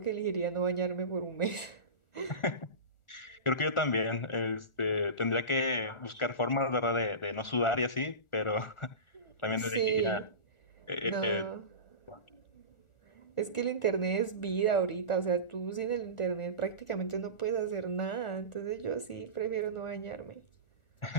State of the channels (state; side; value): late; right; 1.4 ms